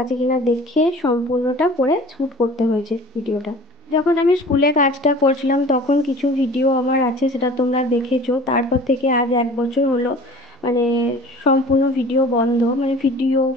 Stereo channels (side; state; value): both; normal; correlation 0.44